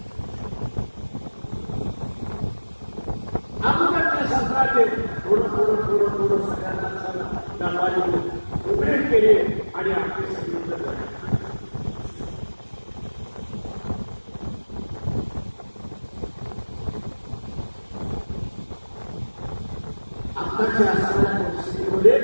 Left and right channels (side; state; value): both; inverted; correlation -1.00